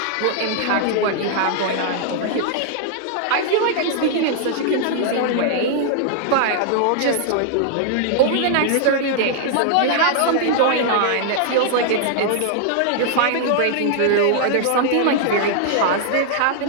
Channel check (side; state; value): both; different; correlation -0.01